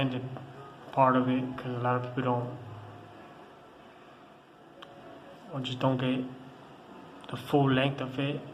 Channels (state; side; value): identical; both; correlation 1.00